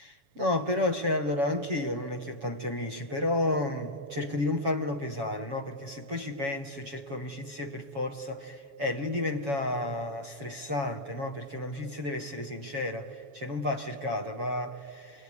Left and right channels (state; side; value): late; left; 7.2 ms